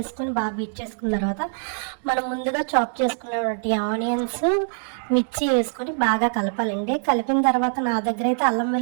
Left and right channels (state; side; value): silent; left; digital silence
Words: బాగా బీట్ చేసుకున్న తర్వాత మనం ముందుగా చాప్ చేసుకున్నటువంటి ఆనియన్స్, మిర్చి వేసుకొని బాగా కలపాలండి. కలిపిన తర్వాత నా దగ్గర అయితే అల్లం